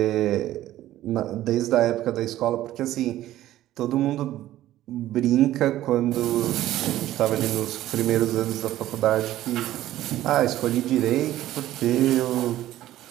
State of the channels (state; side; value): quieter; left; 14.1 dB